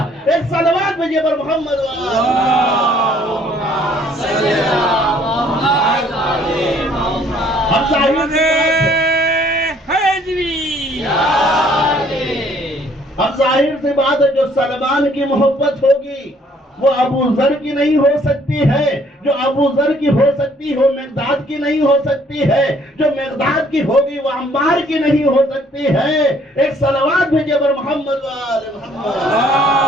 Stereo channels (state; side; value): normal; both; correlation 0.61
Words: ایک صلوات بھیجئے بر محمد و آل اللہم صلی علی محمد و آل محمد۔ اب ظاہر محمد حیدری اب ظاہر سی بات ہے جو سلمان کی محبت ہوگی وہ ابو ذر کی نہیں ہو سکتی ہے، جو ابو ذر کی ہو سکتی ہو مقداد کی نہیں ہو سکتی ہے، جو مقداد کی ہوگی وہ عمار کی نہیں ہو سکتی ہے۔ ایک صلوات بھیجئے بر محمد و آل محمد۔